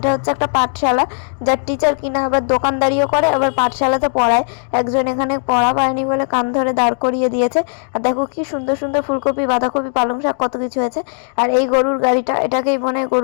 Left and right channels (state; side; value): silent; right; digital silence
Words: হচ্ছে একটা পাঠশালা, যার টিচার কিনা আবার দোকানদারিও করে আবার পাঠশালাতে পড়ায়। একজন এখানে পড়া পায়নি বলে কান ধরে দাঁড় করিয়ে দিয়েছে। আর দেখো কি সুন্দর সুন্দর ফুলকপি, বাঁধাকপি, পালং শাক কত কিছু হয়েছে। আর এই গরুর গাড়িটা, এটাকেই মনে হয়